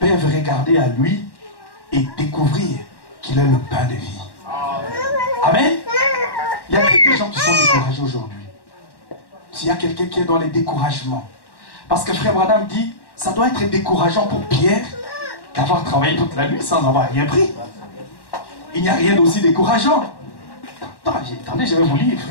regarder à lui et découvrir qu'il est le pain de vie. Amen. Il y a des gens qui sont découragés aujourd'hui. S'il y a quelqu'un qui est dans les découragements. Parce que Frère Branham dit, ça doit être décourageant pour Pierre d'avoir travaillé toute la nuit sans avoir rien pris. Il n'y a rien d'aussi décourageant. Attendez, je vais vous lire,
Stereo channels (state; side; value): late; right; 1.1 ms